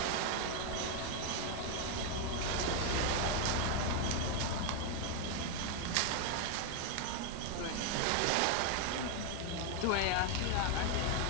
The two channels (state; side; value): different; both; correlation 0.01